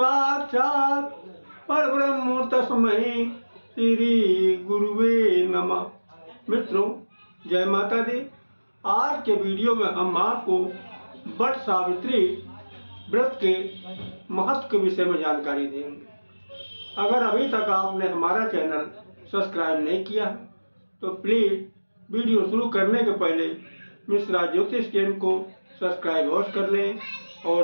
परब्रह्म तस्मै श्री गुरुवे नमः। मित्रों, जय माता दी। आज के वीडियो में हम आपको वट सावित्री व्रत के महत्व के विषय में जानकारी देंगे। अगर अभी तक आपने हमारा चैनल सब्सक्राइब नहीं किया तो प्लीज़ वीडियो शुरू करने के पहले मिश्रा ज्योतिष चैनल को सब्सक्राइब अवश्य कर लें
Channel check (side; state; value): both; inverted; correlation -1.00